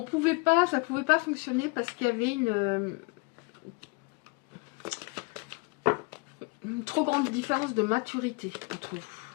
pouvait pas fonctionner parce qu'il y avait une trop grande différence de maturité entre vous.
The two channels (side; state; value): right; quieter; 27.6 dB